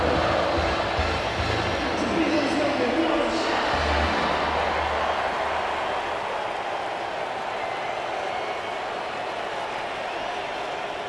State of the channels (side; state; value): both; identical; correlation 1.00